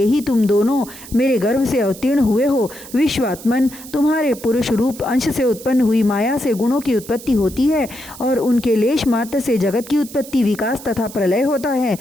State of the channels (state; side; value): noise; right; hiss, 16 dB below the sound